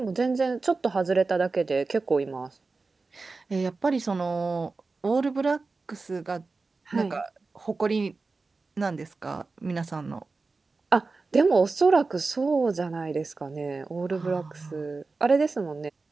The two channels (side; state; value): left; quieter; 3.9 dB